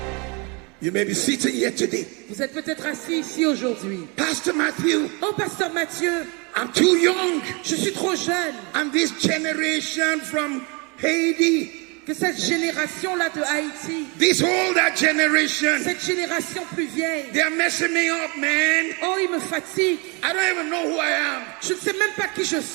You may be sitting here today. Vous êtes peut-être assis ici aujourd'hui. Pastor Matthew, Oh, Pasteur Mathieu, I'm too young. je suis trop jeune. And this generation from Haiti, Que cette génération-là de Haïti, this older generation, cette génération plus vieille, they're messing me up, man. oh, il me fatigue. I don't even know who I am. Je ne sais même pas qui je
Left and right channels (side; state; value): left; quieter; 30.6 dB